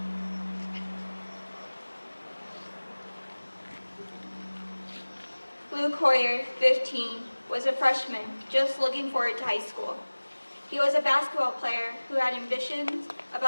Luke Hoyer, 15, was a freshman just looking forward to high school. He was a basketball player who had ambitions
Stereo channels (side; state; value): both; inverted; correlation -1.00